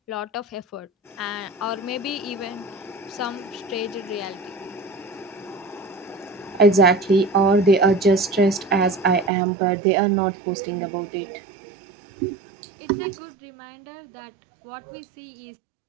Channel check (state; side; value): drops out; left; at 9.3 s